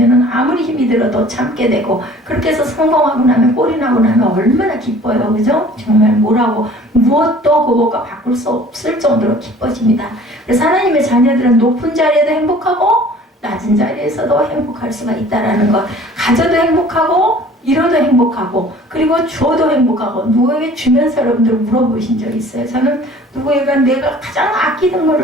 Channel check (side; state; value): both; normal; correlation 0.49